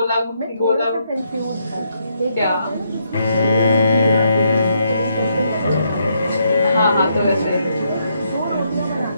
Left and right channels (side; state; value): both; inverted; correlation -0.76